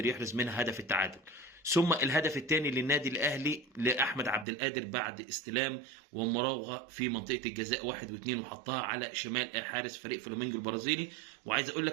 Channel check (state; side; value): drops out; left; at 4.5 s